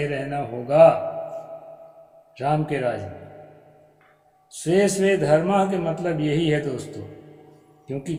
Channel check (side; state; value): both; identical; correlation 1.00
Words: रहना होगा राम के राज में। स्वे स्वे धर्म के मतलब यही है दोस्तों, क्योंकि